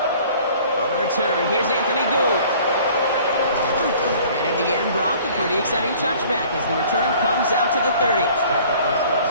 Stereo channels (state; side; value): inverted; both; correlation -0.51